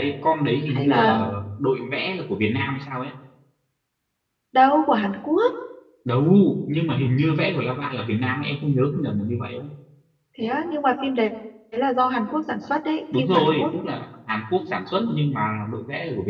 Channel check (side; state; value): both; identical; correlation 1.00